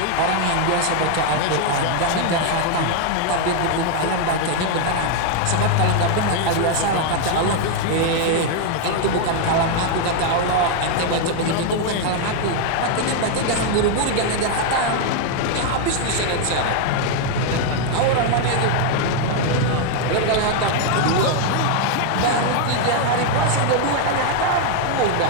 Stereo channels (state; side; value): different; both; correlation 0.00